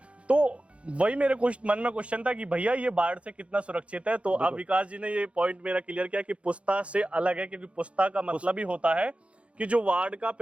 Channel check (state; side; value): late; left; 0.061 ms